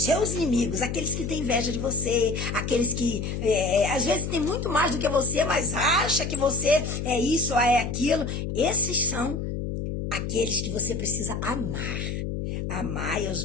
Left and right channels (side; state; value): left; noise; hum, 4 dB below the sound